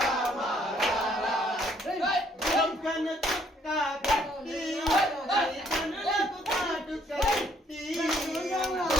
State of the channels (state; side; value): normal; both; correlation 0.65